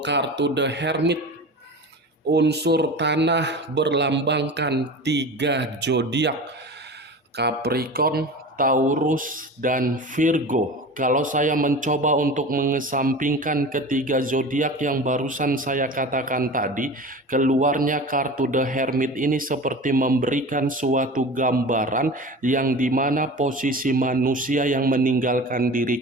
The Hermit, unsur tanah berlambangkan 3 zodiak, Capricorn, Taurus, dan Virgo. Kalau saya mencoba untuk mengesampingkan ketiga zodiak yang barusan saya katakan tadi, keluarnya kartu The Hermit ini seperti memberikan suatu gambaran yang dimana posisi manusia yang meninggalkan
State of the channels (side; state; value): both; normal; correlation 0.34